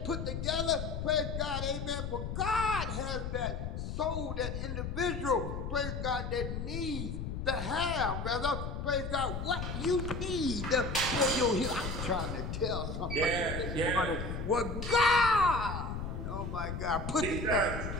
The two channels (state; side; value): noise; left; rumble, 4 dB below the sound